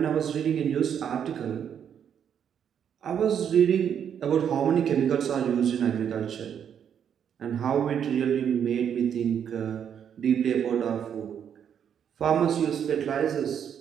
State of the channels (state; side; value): quieter; left; 8.4 dB